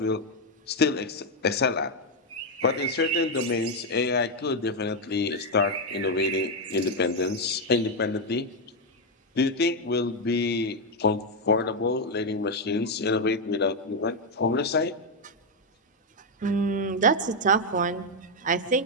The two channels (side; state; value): both; normal; correlation 0.03